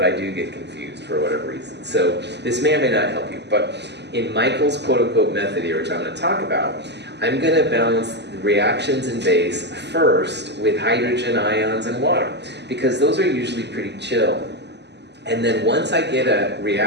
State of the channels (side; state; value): left; late; 0.50 ms